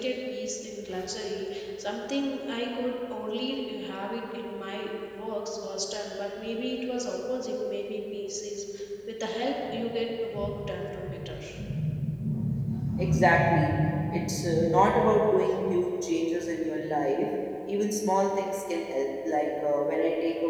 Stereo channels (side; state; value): both; identical; correlation 1.00